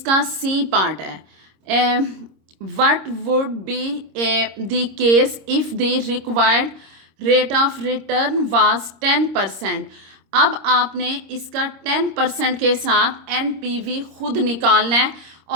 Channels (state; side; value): late; left; 26 ms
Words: सी पार्ट है। What would be the case if the required rate of return was 10%। अब आपने इसका 10% के साथ एनपीवी खुद निकालना है